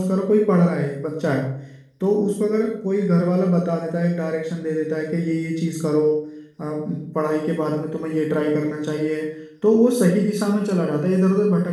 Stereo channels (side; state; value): both; identical; correlation 1.00